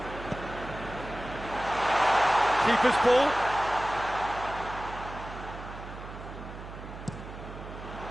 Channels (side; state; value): right; noise; hum, 12 dB below the sound